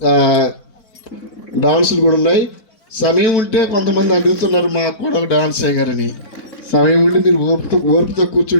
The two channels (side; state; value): right; late; 4.5 ms